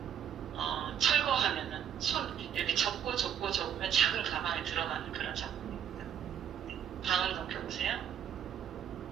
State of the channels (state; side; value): quieter; left; 9.2 dB